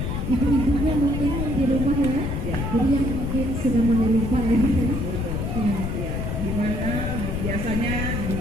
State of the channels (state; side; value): noise; left; rumble, 2 dB below the sound